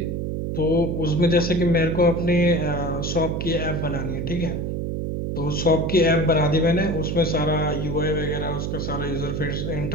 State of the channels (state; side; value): noise; right; hum, 2 dB below the sound